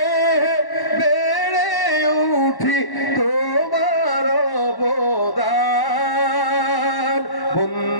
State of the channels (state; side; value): late; right; 1.1 ms